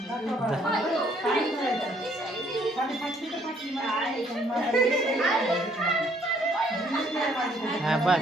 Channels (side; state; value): both; normal; correlation 0.65